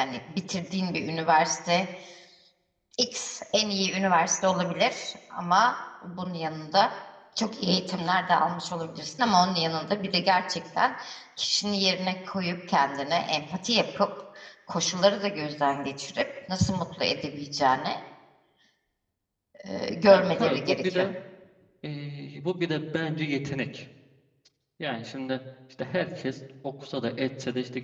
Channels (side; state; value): both; identical; correlation 1.00